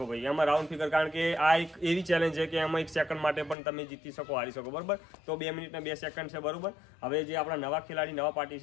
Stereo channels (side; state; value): right; drops out; at 3.6 s